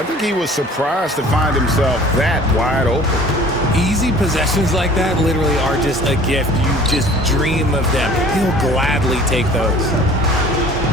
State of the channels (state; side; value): normal; both; correlation 0.48